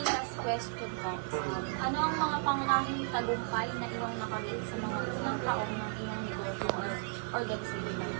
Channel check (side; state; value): left; silent; 55 dB below the other